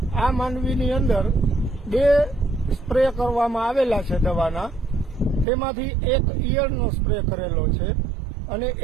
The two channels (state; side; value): drops out; left; at 5.5 s